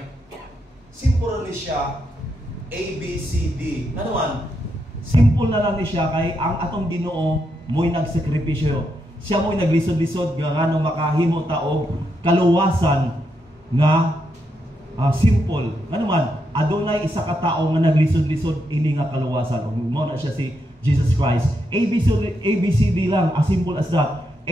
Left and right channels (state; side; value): normal; both; correlation 0.81